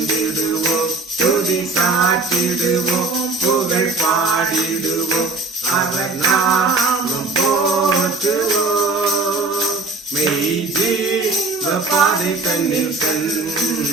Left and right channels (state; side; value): quieter; left; 3.6 dB